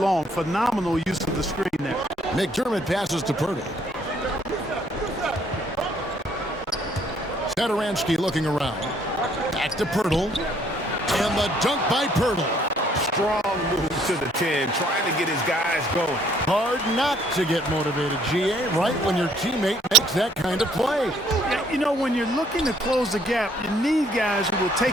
Phenomenal use of the screen there. McDermott passes to Purdy. Satoransky looking around. Back to Pirtle. And the dunk by Pirtle. Strong move to the 10, trying to get his guys going. Hard not to get motivated, GA, right when your teammate makes that kind of play. Yeah, you know, when you're looking to close the gap, you need guys who will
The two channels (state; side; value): normal; both; correlation 0.63